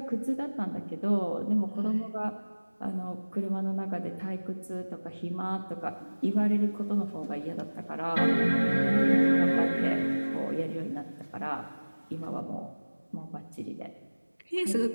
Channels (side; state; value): both; inverted; correlation -1.00